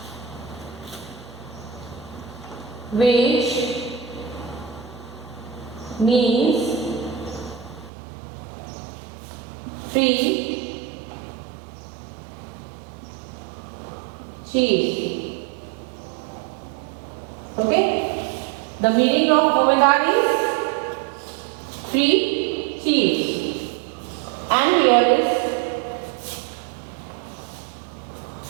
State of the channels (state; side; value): drops out; left; at 7.9 s